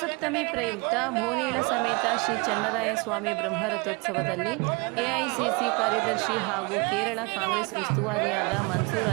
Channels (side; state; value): left; quieter; 29.4 dB